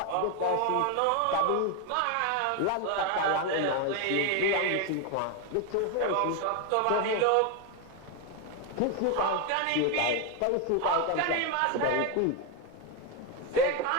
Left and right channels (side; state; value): both; different; correlation 0.01